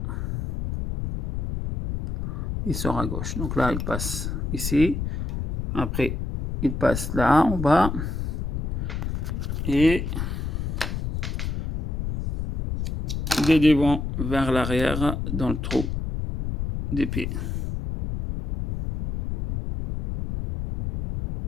il sort à gauche. Donc là il passe ici, après il passe là en bas et des devant vers l'arrière dans le trou des pieds.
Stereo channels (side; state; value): left; noise; rumble, 3 dB below the sound